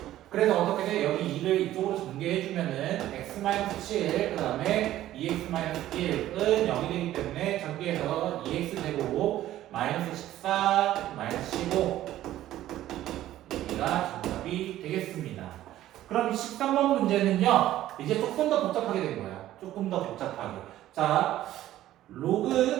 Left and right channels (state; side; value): quieter; left; 13.7 dB